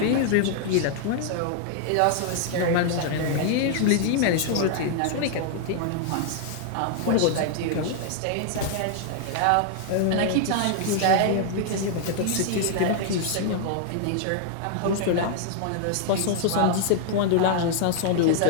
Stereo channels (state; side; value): different; both; correlation 0.00